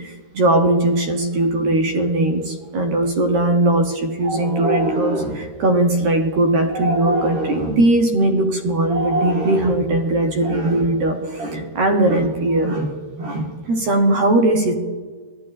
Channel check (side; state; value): left; late; 13 ms